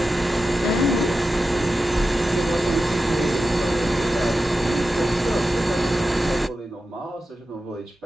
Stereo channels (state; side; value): normal; both; correlation 0.91